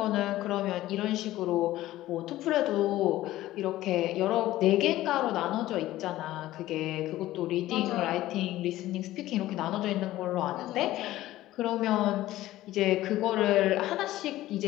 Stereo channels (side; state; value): right; quieter; 15.5 dB